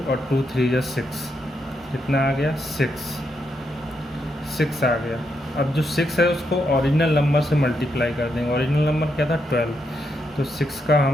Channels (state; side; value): normal; both; correlation 0.81